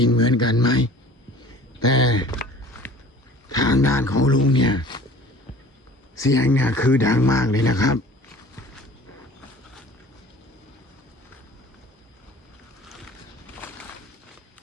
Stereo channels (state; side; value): normal; both; correlation 0.46